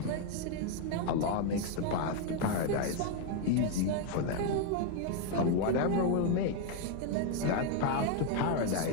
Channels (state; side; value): different; both; correlation 0.01